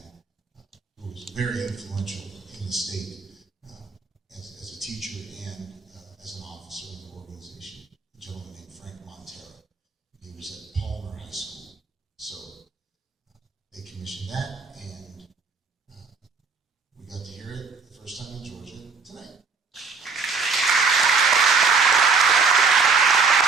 who was very influential in the state as a teacher and as an officer in the organization, a gentleman named Frank Montero. He was at Palmer High School. So they commissioned that, and we got to hear it the first time in Georgia tonight.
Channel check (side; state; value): left; quieter; 4.9 dB